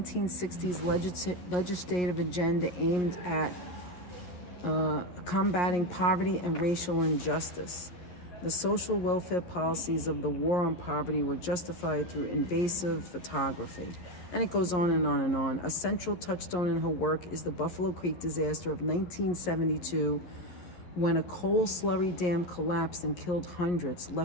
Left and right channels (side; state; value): right; late; 11 ms